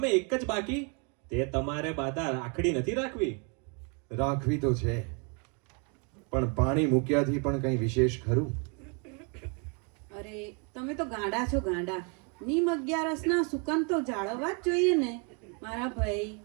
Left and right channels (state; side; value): quieter; left; 35.5 dB